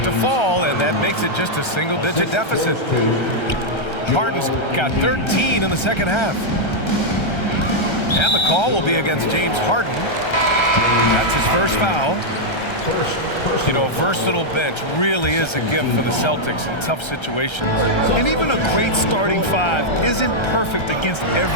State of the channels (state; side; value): late; right; 1.3 ms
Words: to fall, and that makes it just a single-digit deficit. Harden's got 13 in the second half. And the call will be against James Harden. That's his first foul. You know, a versatile bench really is a gift for the Celtics in tough situations. And even a great starting 5 isn't perfect against